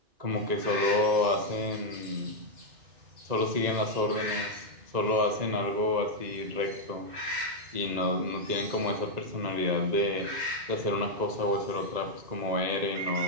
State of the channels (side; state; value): left; late; 2.0 ms